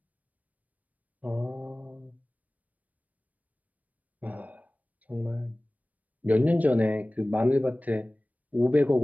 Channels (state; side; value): late; left; 0.073 ms